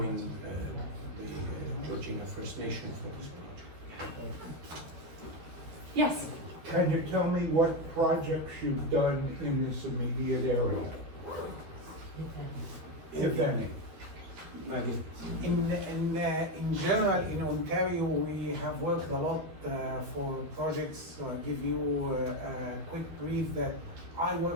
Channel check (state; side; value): late; left; 13 ms